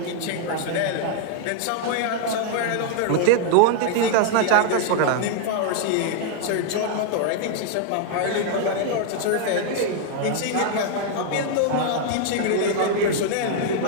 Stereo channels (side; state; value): both; different; correlation 0.00